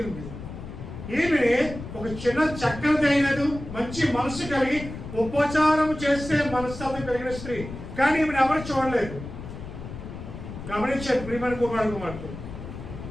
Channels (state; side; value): noise; left; rumble, 11 dB below the sound